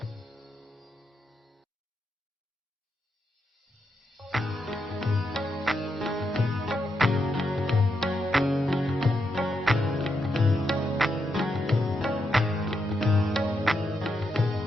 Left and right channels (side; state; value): both; normal; correlation 0.83